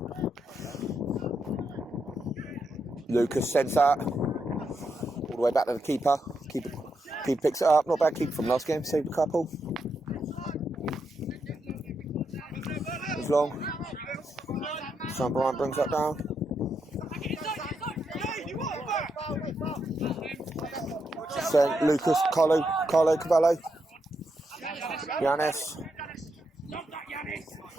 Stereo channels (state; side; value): normal; both; correlation 0.82